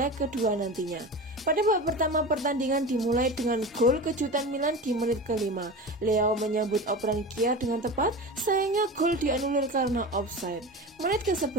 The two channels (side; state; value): both; normal; correlation 0.29